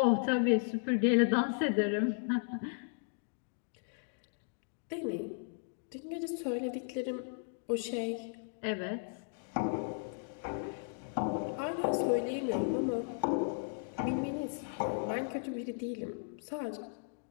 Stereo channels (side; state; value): right; silent; digital silence